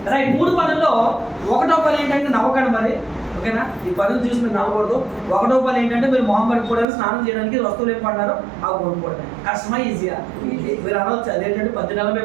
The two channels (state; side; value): drops out; left; at 6.9 s